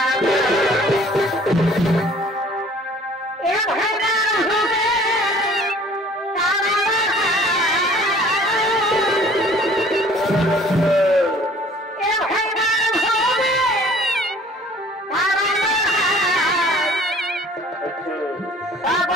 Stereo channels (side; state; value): both; normal; correlation 0.52